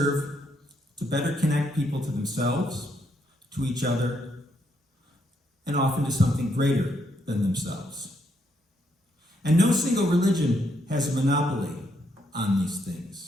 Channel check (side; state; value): both; normal; correlation 0.76